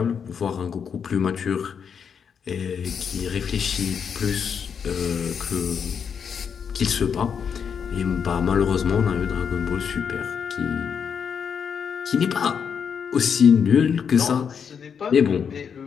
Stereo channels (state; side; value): quieter; right; 7.0 dB